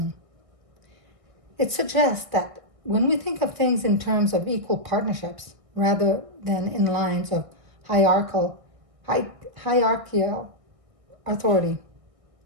It suggests that when we think of things in terms of equal partnerships rather than in lines of hierarchical authority,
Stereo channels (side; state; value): left; late; 1.6 ms